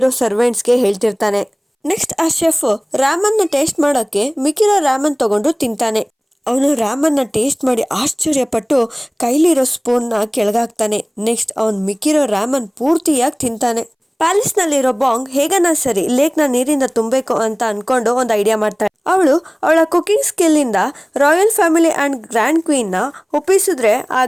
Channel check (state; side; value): identical; both; correlation 1.00